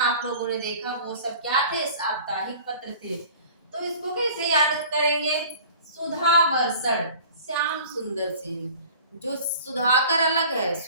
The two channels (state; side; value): inverted; both; correlation -0.45